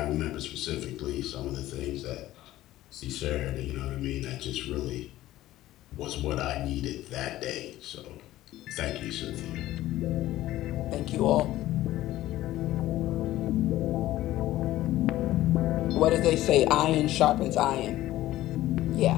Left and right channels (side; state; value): right; quieter; 15.2 dB